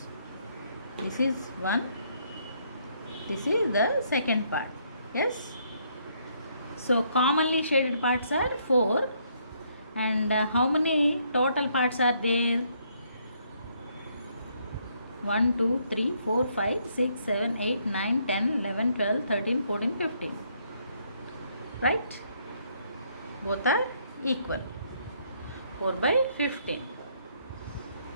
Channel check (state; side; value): inverted; both; correlation -0.70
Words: This is 1. This is the second part. Yes. So commonly shaded parts are 4. And how many total parts are there? 1, 2, 3, 4, 5, 6, 7, 8, 9, 10, 11, 12, 13, 14, 15. Right? Both are equal. 4 by 15.